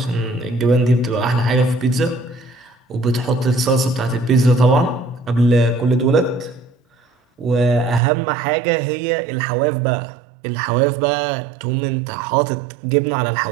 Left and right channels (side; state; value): left; drops out; at 8.0 s